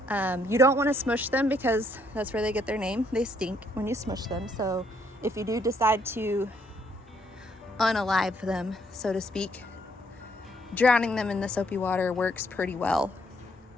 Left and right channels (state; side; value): normal; both; correlation 0.70